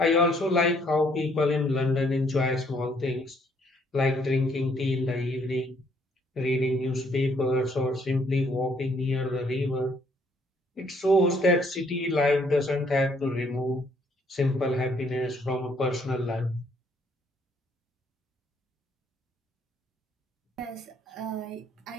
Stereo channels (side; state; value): both; normal; correlation 0.67